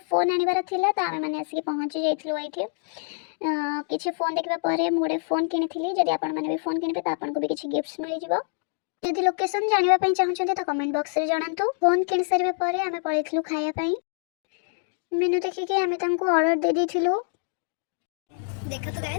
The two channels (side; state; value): right; silent; digital silence